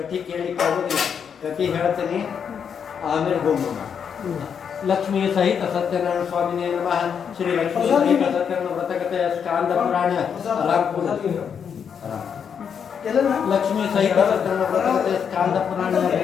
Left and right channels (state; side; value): quieter; right; 7.3 dB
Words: ಕೇಳಲಿಕ್ಕೆ ಆಗೋದಿಲ್ಲ, ಕಥೆ ಹೇಳ್ತೀನಿ ಆಮೇಲೆ ಹೋಮ. ಲಕ್ಷ್ಮೀ ಸಹಿತ ಸತ್ಯನಾರಾಯಣ ಸ್ವಾಮಿನೇ ನಮಃ. ಶ್ರೀ ಲಕ್ಷ್ಮೀ ಸಹಿತ ಸತ್ಯನಾರಾಯಣ ವ್ರತಕಥೆಯ ಸ್ಕಾಂದ ಪುರಾಣ ರಾಮಪುರ. ಲಕ್ಷ್ಮೀ ಸಹಿತ ಸತ್ಯನಾರಾಯಣ ವ್ರತಕಥೆಯ ಸ್ಕಾಂದ ಪುರಾಣ